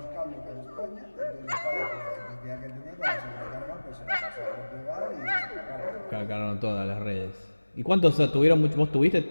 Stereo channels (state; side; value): inverted; both; correlation -1.00